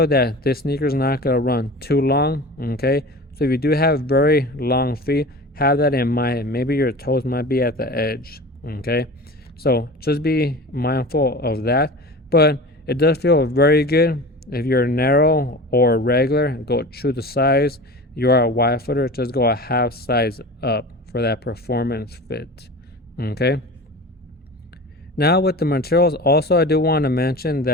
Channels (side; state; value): both; normal; correlation 0.34